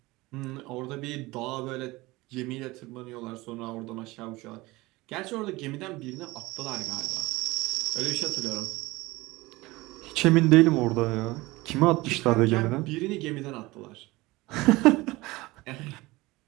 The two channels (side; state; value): left; quieter; 20.9 dB